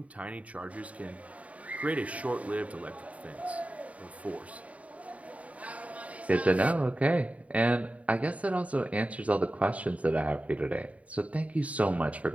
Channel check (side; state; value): left; late; 0.068 ms